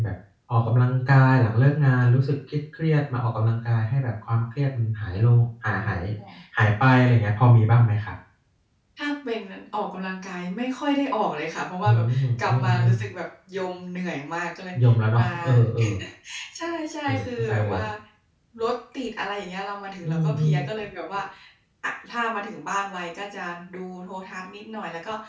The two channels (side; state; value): both; identical; correlation 1.00